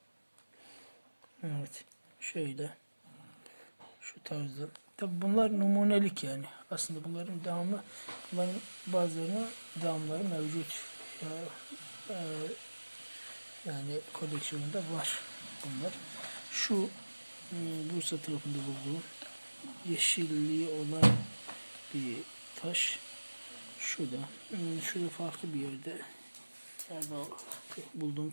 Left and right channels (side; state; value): both; inverted; correlation -1.00